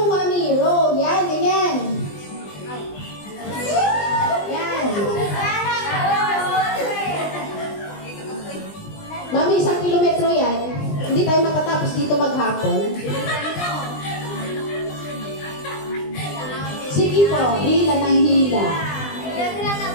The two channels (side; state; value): right; late; 20 ms